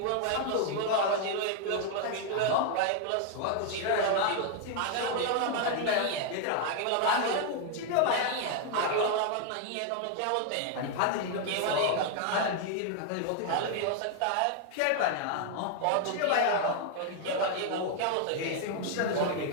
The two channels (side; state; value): both; different; correlation 0.00